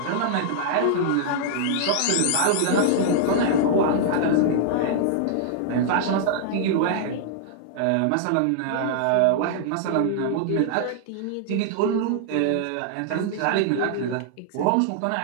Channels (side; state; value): both; different; correlation -0.01